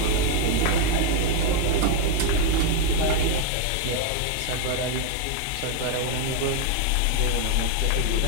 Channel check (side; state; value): both; different; correlation 0.01